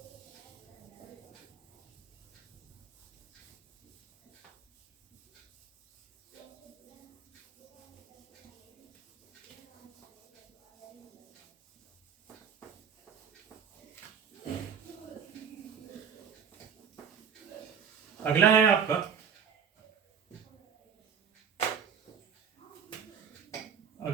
अगला है आपका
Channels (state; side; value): quieter; left; 7.4 dB